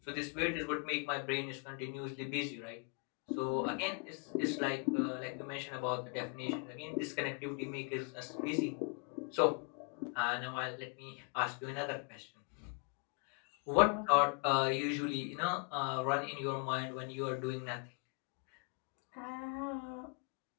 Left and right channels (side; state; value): right; quieter; 34.2 dB